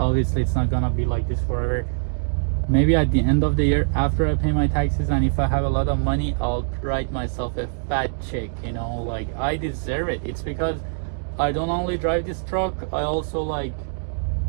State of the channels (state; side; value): silent; left; digital silence